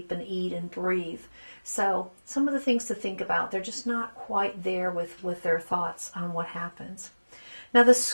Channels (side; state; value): both; inverted; correlation -1.00